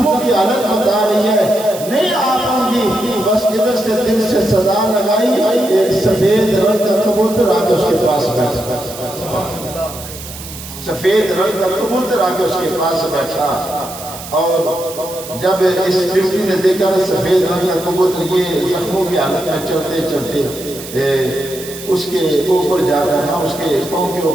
کی حالت بتا رہی ہے نہیں آ پاؤں گی۔ بس ادھر سے دل سے صدا لگائی، ایک سفید رنگ کا کبوتر آ کے اس کے پاس بیٹھا، سفید رنگ کا کبوتر آ کے اس کے پاس بیٹھا، اور جب اس چمٹی نے دیکھا سفید رنگ کا کبوتر یہ زخموں کی حالت میں چلتے چلتے اس کے اوپر جا کر نہ اس کے پاؤں کے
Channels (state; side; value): noise; right; hiss, 13 dB below the sound